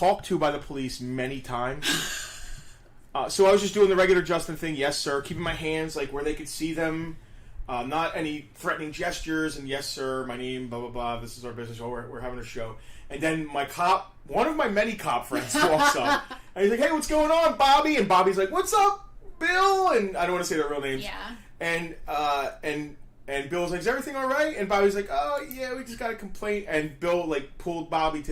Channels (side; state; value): both; identical; correlation 1.00